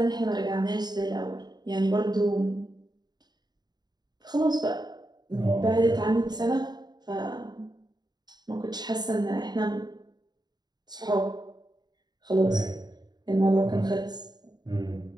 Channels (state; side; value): late; left; 0.20 ms